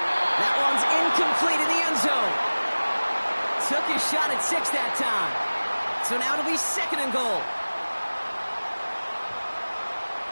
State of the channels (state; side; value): inverted; both; correlation -1.00